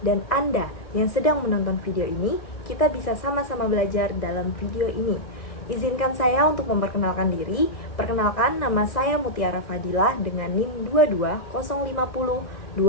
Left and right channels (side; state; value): right; late; 2.0 ms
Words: dan Anda yang sedang menonton video ini, kita bisa sama-sama belajar dalam video ini. Izinkan saya untuk memperkenalkan diri. Perkenalkan, nama saya Mutiara Fadilah dengan NIM